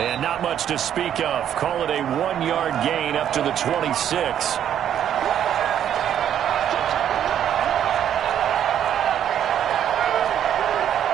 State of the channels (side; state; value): left; quieter; 9.9 dB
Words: not much to speak of. Call it a 1-yard gain up to the 26.